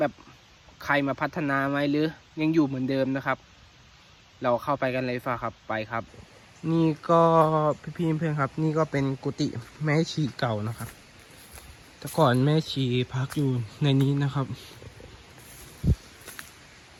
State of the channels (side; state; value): both; identical; correlation 1.00